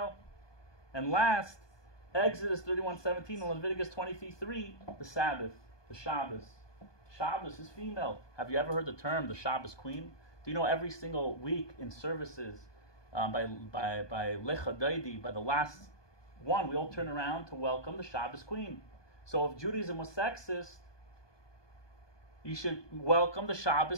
And last, Exodus 31:17 and Leviticus 23:3, the Sabbath, the Shabbos. Shabbos is female. Have you ever heard the term the Shabbos queen? Do you know every single week in services by Lecha Daidi, by the last one, we all turn around to welcome the Shabbos queen. So if Judaism was sexist, you should welcome the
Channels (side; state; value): right; late; 1.2 ms